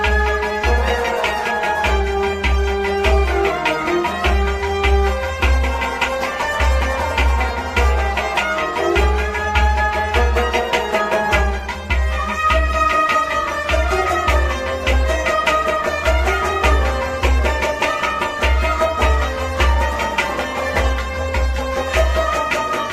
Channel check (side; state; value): both; identical; correlation 1.00